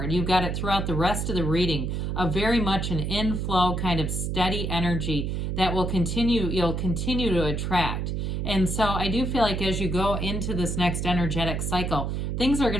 You've got it throughout the rest of the reading, a very much an inflow kind of steady energy that will continue, you'll continue to attract. And so I do feel like as you go into this next energetic cycle, things are going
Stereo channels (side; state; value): right; noise; hum, 1 dB below the sound